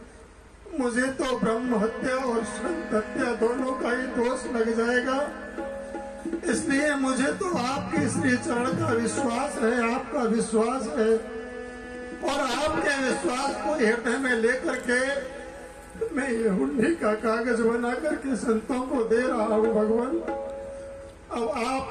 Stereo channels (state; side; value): identical; both; correlation 1.00